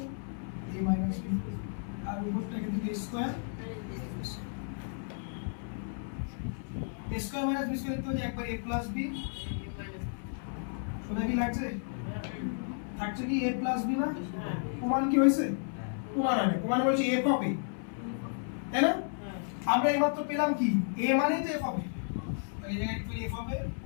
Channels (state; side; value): silent; right; 56 dB below the other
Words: এ মাইনাস বি আর উপরটা কিন্তু A square square minus B square তো একবার a প্লাস b শোনা কি লাগছে থাকছে কি a প্লাস b না প্রমাণ কি হইছে প্রমাণ হবে প্রমাণ বলছে f অফ a তাই না আমরা এইমাত্র পেলাম কি a মানে তো f অফ a তাই এই জায়গায় একটু f অফ a